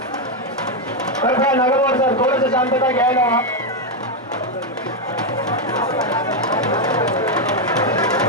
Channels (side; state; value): both; normal; correlation 0.03